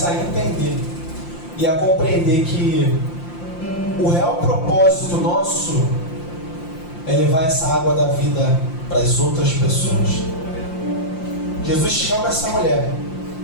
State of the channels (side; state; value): right; late; 5.8 ms